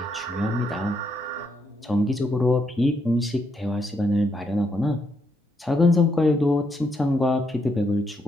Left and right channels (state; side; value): normal; both; correlation 0.77